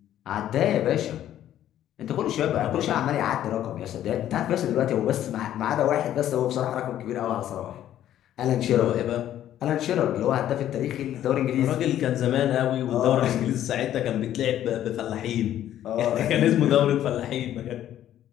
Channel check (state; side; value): quieter; right; 11.7 dB